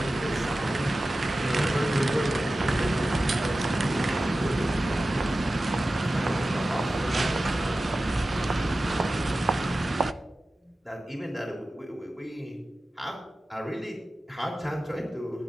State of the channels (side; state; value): both; normal; correlation 0.95